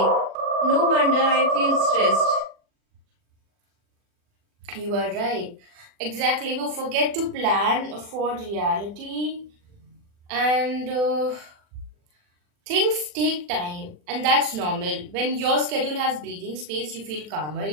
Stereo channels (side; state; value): left; late; 40 ms